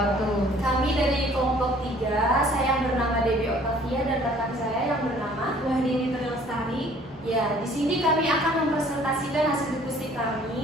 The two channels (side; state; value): both; normal; correlation 0.55